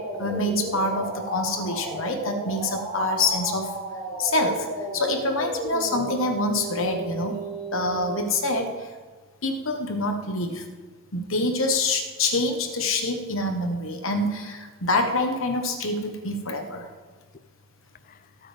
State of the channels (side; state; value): both; normal; correlation -0.01